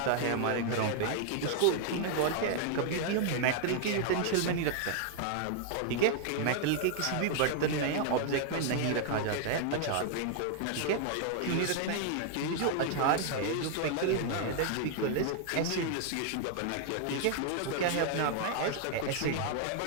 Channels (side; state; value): both; different; correlation 0.00